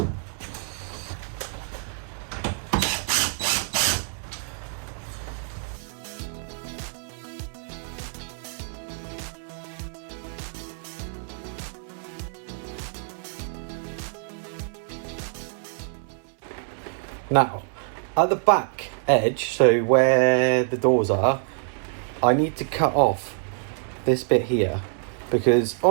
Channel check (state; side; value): silent; left; 61 dB below the other